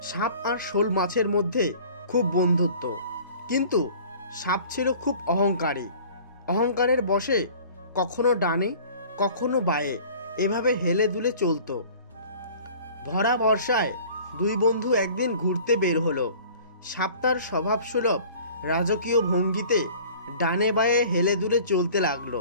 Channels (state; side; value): inverted; both; correlation -0.47